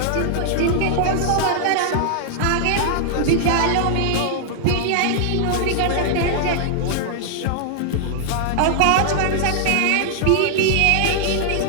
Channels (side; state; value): both; different; correlation -0.01